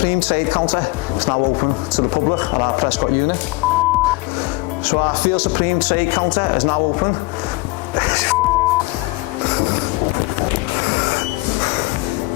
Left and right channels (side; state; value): right; quieter; 23.4 dB